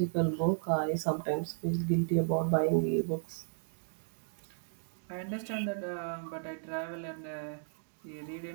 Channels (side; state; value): left; silent; digital silence